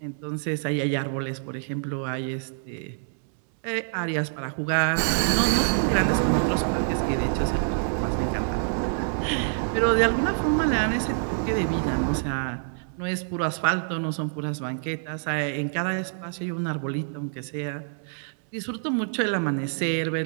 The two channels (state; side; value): silent; left; 61 dB below the other